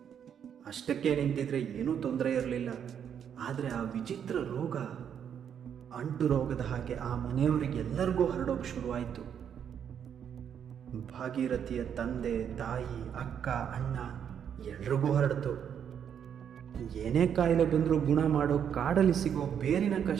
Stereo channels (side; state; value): left; quieter; 8.4 dB